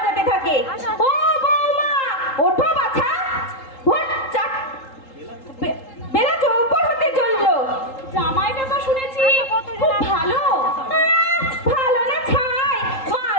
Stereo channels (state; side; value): late; right; 3.8 ms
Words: থাকে। ও বৌমা, ওঠো বাছা, ভোর 4 বেলা 4 হতে চললো। জামাইটা তো শুনেছি খুব ভালো। ভালো না ছাই, মা